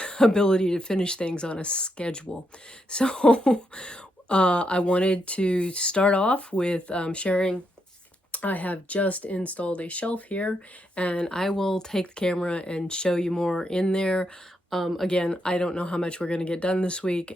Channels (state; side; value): normal; both; correlation 0.80